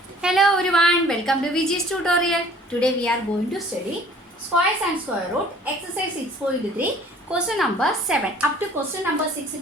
Hello everyone, welcome to VG's tutorial. Today we are going to study squares and square root exercise 6.3 question number 7. Up to question number 6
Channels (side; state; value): both; normal; correlation 0.53